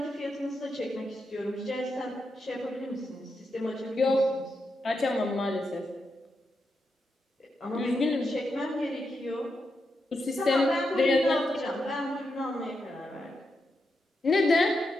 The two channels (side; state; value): both; normal; correlation 0.85